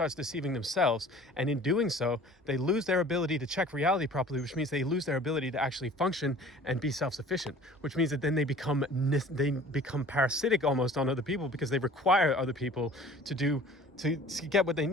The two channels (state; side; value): normal; both; correlation 0.47